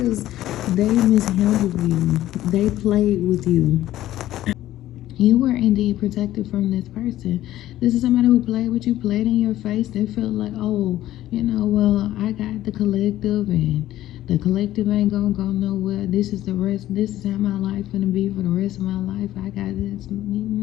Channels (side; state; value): right; quieter; 14.1 dB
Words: they mishandled you. They played with you. You were indeed protected from this person. This is somebody who played with you, played in your face. They felt like, oh, well, I got the collective, and the collective ain't gonna go nowhere. This is the rest. This is how my life gonna be for the rest of my life. I got this.